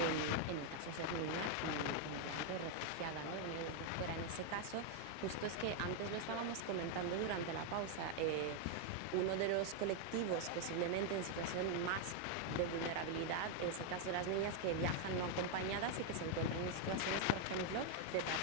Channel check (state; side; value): different; both; correlation 0.00